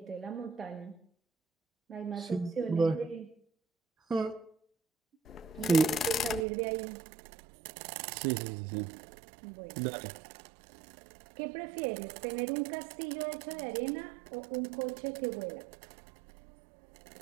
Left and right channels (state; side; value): drops out; left; at 6.5 s